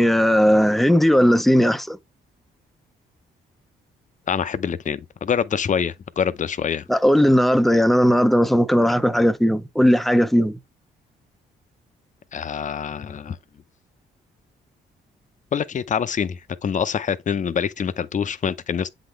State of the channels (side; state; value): both; normal; correlation 0.88